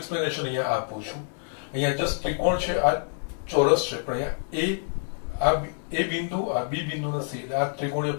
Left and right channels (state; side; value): silent; right; 57 dB below the other